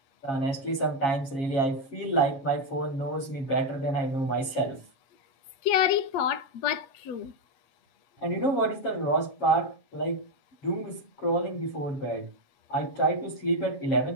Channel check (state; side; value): late; right; 7.3 ms